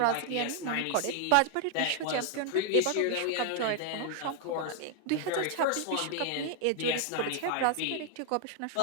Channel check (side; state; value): both; different; correlation 0.00